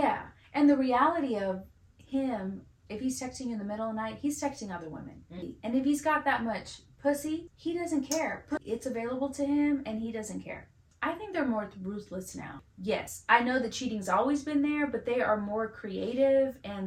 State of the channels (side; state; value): both; identical; correlation 1.00